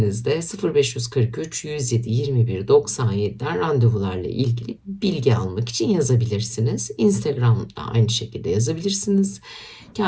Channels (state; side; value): identical; both; correlation 1.00